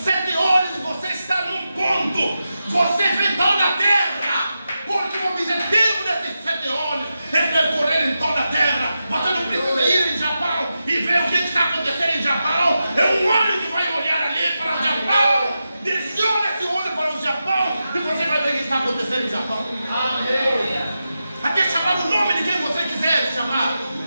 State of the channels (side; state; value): both; inverted; correlation -0.90